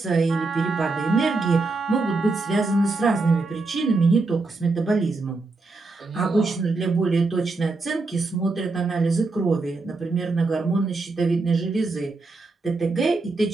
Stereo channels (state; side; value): quieter; left; 3.6 dB